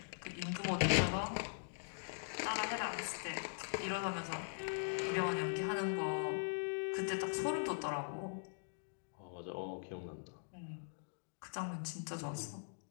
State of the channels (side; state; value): right; silent; digital silence